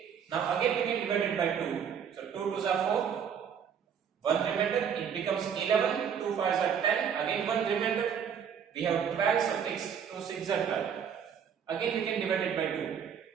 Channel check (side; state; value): left; quieter; 7.8 dB